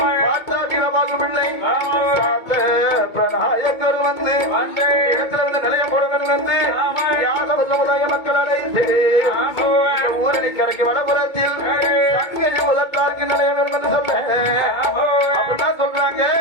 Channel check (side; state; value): right; late; 2.2 ms